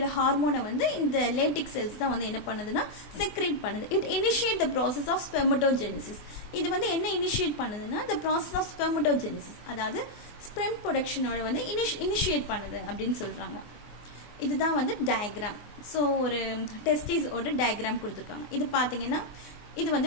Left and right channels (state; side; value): late; right; 24 ms